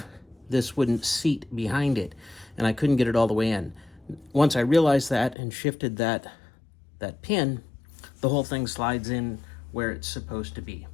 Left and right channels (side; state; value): right; drops out; at 5.4 s